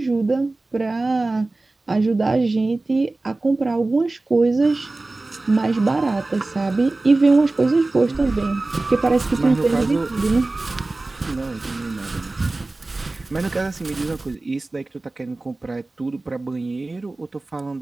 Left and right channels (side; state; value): left; quieter; 3.1 dB